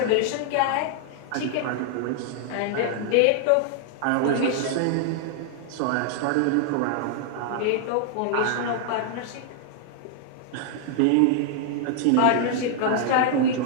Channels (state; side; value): different; both; correlation 0.00